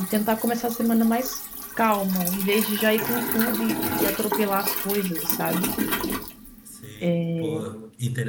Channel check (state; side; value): identical; both; correlation 1.00